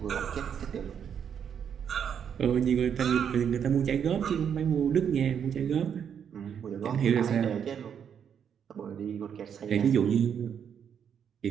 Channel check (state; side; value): quieter; left; 8.0 dB